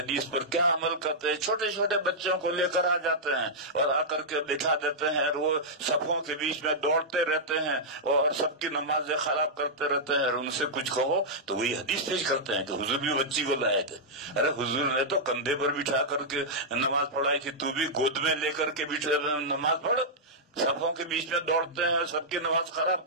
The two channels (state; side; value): normal; both; correlation -0.09